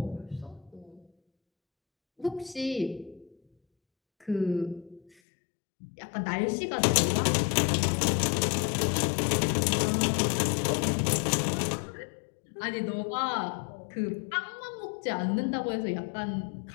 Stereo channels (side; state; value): right; drops out; at 5.1 s